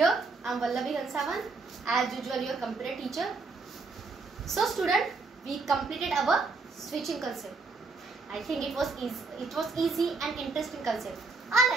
I am Vallavi Hansavan, as usual your computer teacher. So student, we completed our switching concept. I think it was easy and interesting concept. I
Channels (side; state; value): left; quieter; 4.0 dB